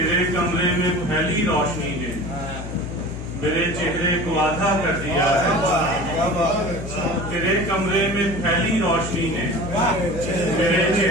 कमरे में फैली रोशनी ने मेरे चेहरे को आधा कर दिया है। तेरे कमरे में फैली रोशनी ने मेरे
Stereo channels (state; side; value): noise; left; hum, 8 dB below the sound